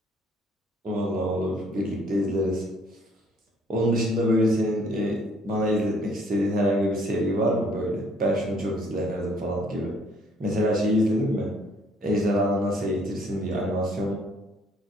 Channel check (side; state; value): both; normal; correlation 0.62